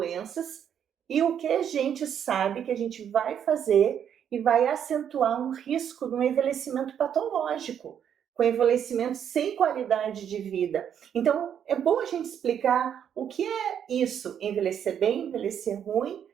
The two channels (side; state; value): left; quieter; 8.8 dB